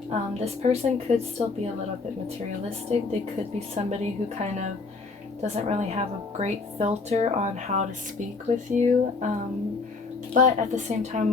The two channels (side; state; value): right; quieter; 4.1 dB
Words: this person could still be a little bit materialistic. They could be somebody who kind of doesn't really have a great filter on how to speak with you. But at the same time,